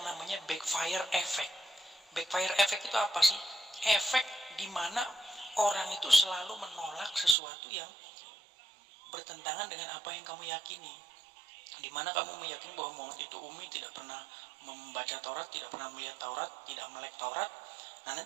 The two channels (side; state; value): left; drops out; at 7.4 s